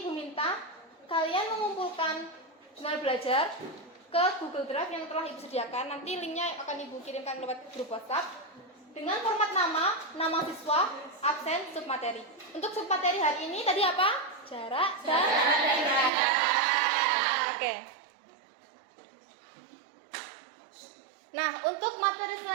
Ibu minta kalian mengumpulkan jurnal belajar ke Google Drive yang telah Ibu sediakan. Nanti linknya akan Ibu kirimkan lewat grup WhatsApp dengan format nama siswa, absen, submateri. Untuk submateri hari ini tadi apa? Jarak dan Oke. Nah, untuk materi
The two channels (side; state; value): left; drops out; at 16.1 s